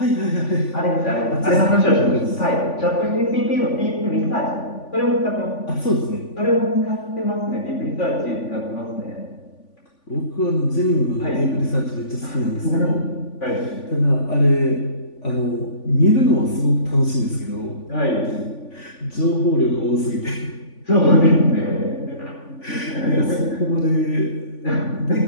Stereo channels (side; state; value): right; late; 3.5 ms